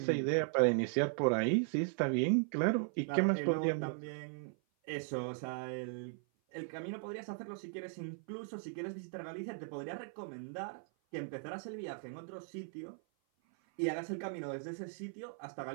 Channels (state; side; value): silent; left; 53 dB below the other